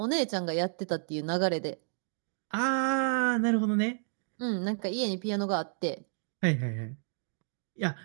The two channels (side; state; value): left; silent; digital silence